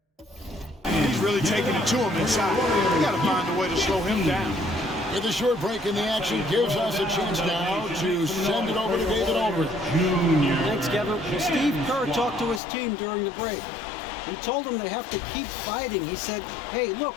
He's really taking it to him inside. We got to find a way to slow him down. With a short break in the action, gives us a chance now to send it over to David Aldridge. Thanks, Kevin. Well, Steve Kerr talked to his team during the break. He told them they have to keep fighting. He said, hey, look,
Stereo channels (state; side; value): drops out; right; at 12.6 s